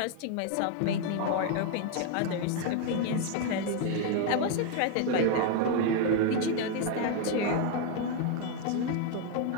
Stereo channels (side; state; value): both; different; correlation 0.01